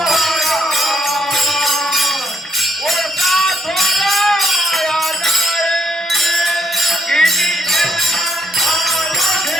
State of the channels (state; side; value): normal; both; correlation 0.73